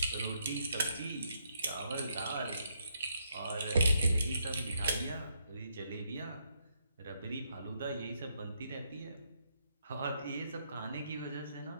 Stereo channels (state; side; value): inverted; both; correlation -0.76